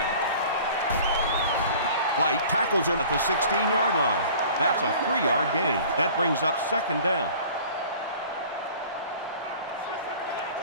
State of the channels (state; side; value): inverted; both; correlation -0.46